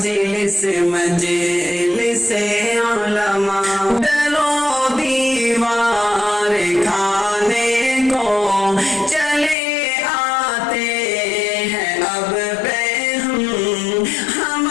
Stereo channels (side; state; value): right; drops out; at 9.6 s